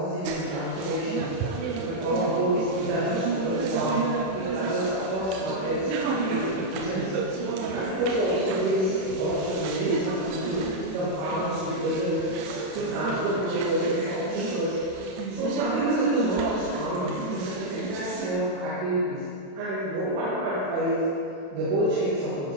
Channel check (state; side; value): late; left; 31 ms